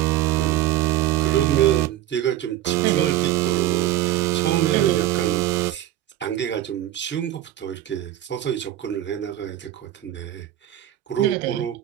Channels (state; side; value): quieter; left; 13.3 dB